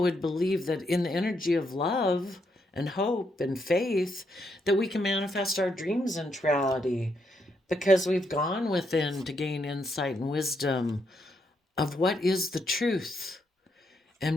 would believe that in the energy of love and hope and faith, that we can manifest our dreams into reality, because we've gone within to gain insight and wisdom of what is the truth,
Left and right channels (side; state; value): both; normal; correlation 0.78